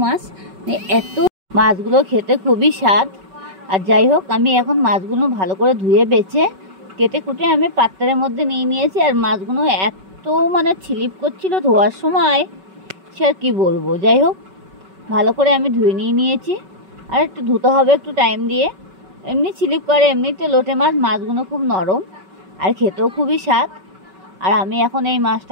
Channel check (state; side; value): late; left; 5.3 ms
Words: মাছ, এত মাছগুলো খেতে খুবই স্বাদ। আর যাই হোক, আমি এখন মাছগুলো ভালো করে ধুয়ে বেছে কেটে কুটে আমি পাত্রের মধ্যে নিয়েছি। আর মাছগুলো এত ছিলিপ করছিল ধোয়ার সময়, সে আর কী বলবো। যাই হোক, ভালো করে আমি ধুয়ে নিয়েছি। আর একটু ধুতে হবে একটু টাইম দিয়ে, এমনি স্লিপ করে। এমনিতে লোটে মাছগুলো খুব নরম আর খেতেও খুবই স্বাদ। আর আমি এখন এই